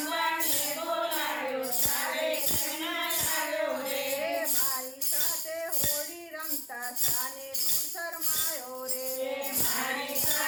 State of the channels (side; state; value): both; identical; correlation 1.00